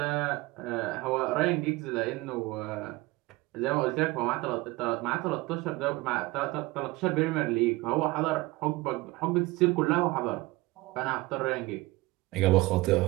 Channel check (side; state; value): left; quieter; 21.2 dB